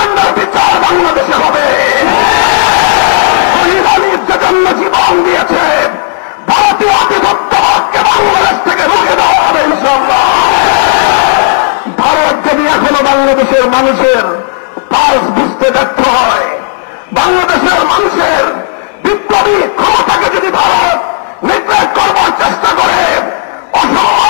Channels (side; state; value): right; silent; digital silence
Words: বিচার বাংলাদেশে হবে। শহীদ জন্য জীবন দিয়েছে, ভারতীয় আধিপত্যবাদকে বাংলাদেশ থেকে রুখে দেওয়া হবে ইনশাআল্লাহ। ভারত যদি এখনো বাংলাদেশের মানুষের পালস বুঝতে ব্যর্থ হয়, বাংলাদেশের মানুষের বিপ্লবী ক্ষমতাকে যদি ভারত নিগ্রেট করবার চেষ্টা করে,